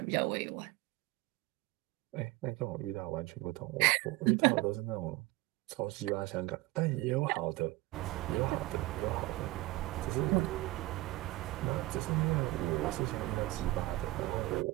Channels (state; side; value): quieter; left; 19.4 dB